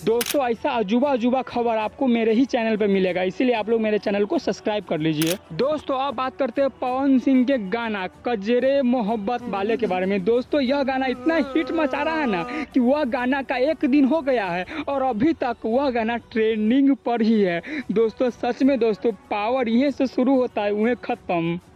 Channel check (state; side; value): identical; both; correlation 1.00